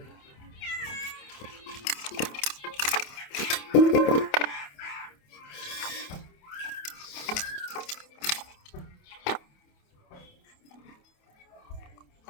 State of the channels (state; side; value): late; right; 28 ms